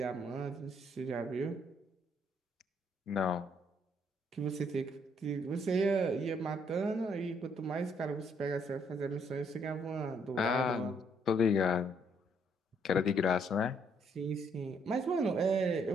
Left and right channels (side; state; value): both; normal; correlation 0.69